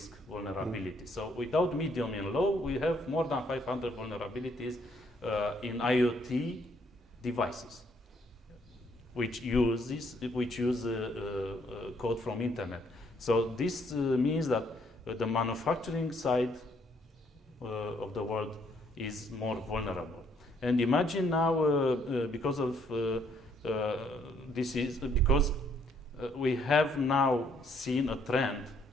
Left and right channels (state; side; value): normal; both; correlation 0.68